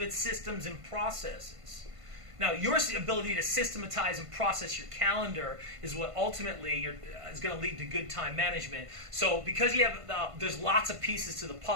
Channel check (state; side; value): late; left; 1.5 ms